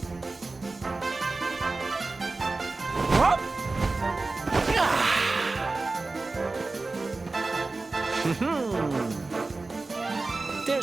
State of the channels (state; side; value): quieter; left; 3.5 dB